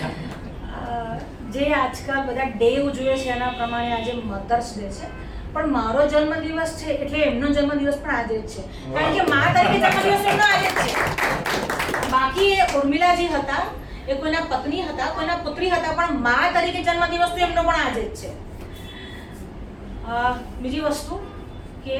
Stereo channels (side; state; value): both; identical; correlation 1.00